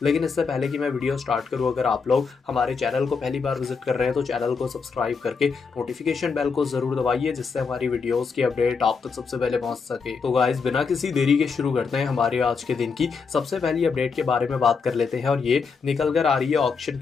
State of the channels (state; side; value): quieter; right; 5.3 dB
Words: लेकिन इससे पहले कि मैं वीडियो स्टार्ट करूँ, अगर आप लोग हमारे चैनल को पहली बार विजिट कर रहे हैं तो चैनल को सब्सक्राइब करके नोटिफिकेशन बेल को जरूर दबाइए, जिससे हमारी वीडियोस की अपडेट आप तक सबसे पहले पहुंच सके। तो गाइस बिना किसी देरी के शुरू करते हैं हमारे आज के दिन की सबसे पहली अपडेट के बारे में बात कर लेते हैं। और ये निकल कर आ रही है ऑक्शन